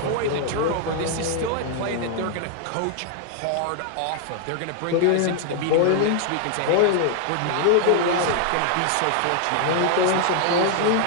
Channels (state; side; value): different; both; correlation 0.00